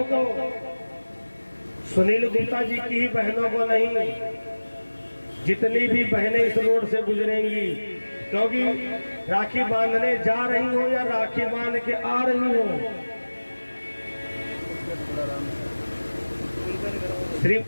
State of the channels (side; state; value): both; inverted; correlation -1.00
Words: सुनील गुप्ता जी की ही बहनों को नहीं, जितनी भी बहनें इस रोड से गुजरेंगी, क्योंकि राखी बांधने जा रही हो या राखी बांध के आ रही हो, श्री